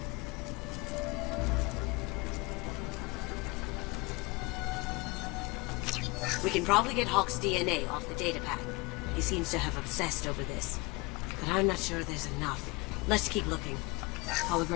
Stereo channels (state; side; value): quieter; right; 25.9 dB